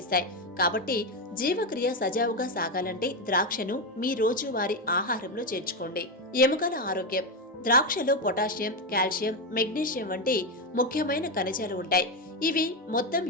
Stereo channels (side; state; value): both; normal; correlation 0.10